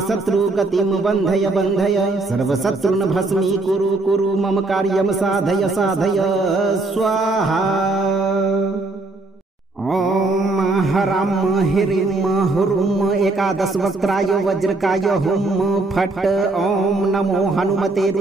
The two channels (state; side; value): quieter; left; 3.2 dB